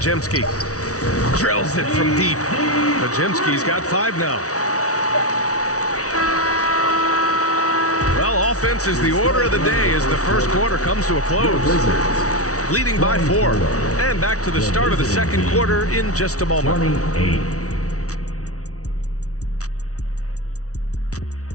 Drills it from deep. Pajemski's got 5 now. Well, offense is the order of the day as the first quarter comes to a close. Leading by 4. And back to the start of the second quarter in just a moment. 28.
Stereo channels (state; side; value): late; right; 0.66 ms